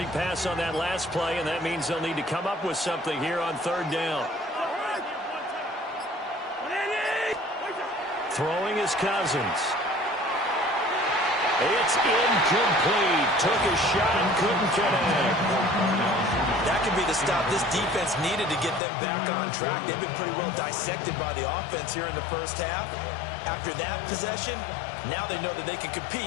pass on that last play, and that means they'll need to come up with something here on third down. Throwing is Cousins. It's incomplete. Took a shot, couldn't connect. That could be the stop this defense needed to get them back on track. They've been pretty well dissected by the offense here in the first half. After that possession, now they know that they can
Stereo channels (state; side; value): drops out; right; at 18.8 s